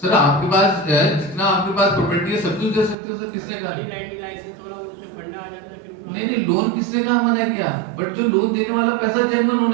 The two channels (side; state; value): left; drops out; at 3.0 s